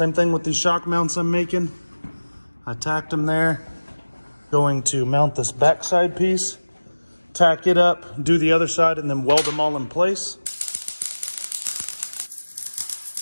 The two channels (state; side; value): inverted; both; correlation -1.00